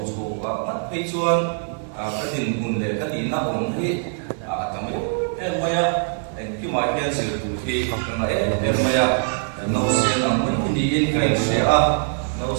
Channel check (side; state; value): left; silent; 64 dB below the other